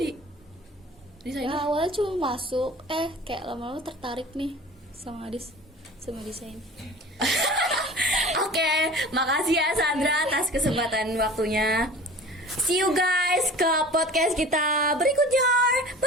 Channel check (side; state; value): both; normal; correlation 0.41